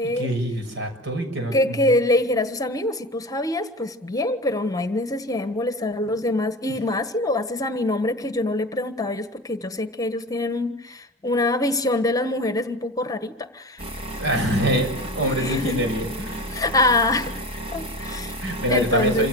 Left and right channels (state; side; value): normal; both; correlation 0.32